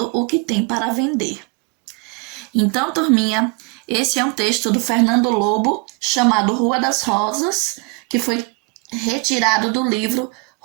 o que tem para vender. Então, turminha, esse é um texto do Fernando Lobo, chamado Rua das Rosas, que foi retirado do livro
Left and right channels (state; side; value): quieter; left; 30.1 dB